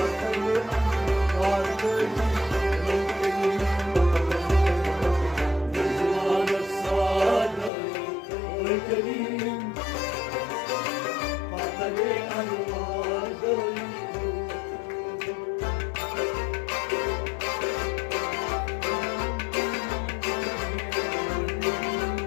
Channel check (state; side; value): drops out; right; at 7.7 s